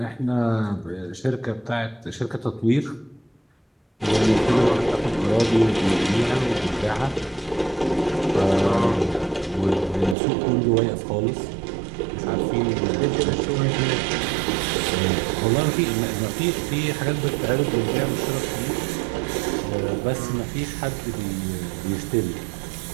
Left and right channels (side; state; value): left; drops out; at 10.2 s